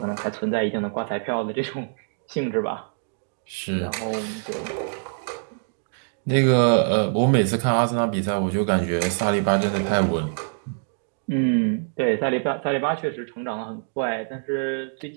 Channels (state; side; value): silent; left; digital silence